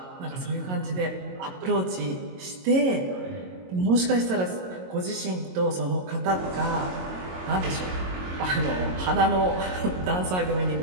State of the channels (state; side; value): late; left; 22 ms